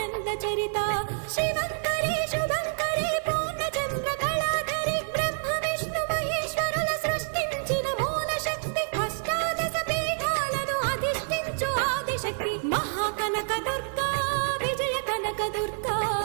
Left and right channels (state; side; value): silent; left; digital silence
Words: చరిత శివంకరి శుభంకరి పూర్ణచంద్ర కళాధరి బ్రహ్మ విష్ణు మహేశ్వరుల సృష్టించిన మూల శక్తి అష్టాదశ పీఠాలను అధిష్ఠించు ఆదిశక్తి మహాకనక దుర్గా విజయ కనక దుర్గా